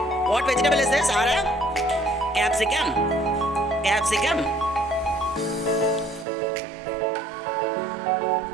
What vegetable is this, Ara? Capsicum. Capsicum.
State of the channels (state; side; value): drops out; left; at 6.2 s